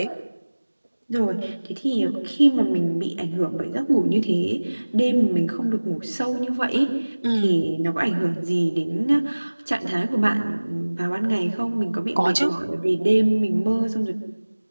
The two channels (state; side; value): inverted; both; correlation -1.00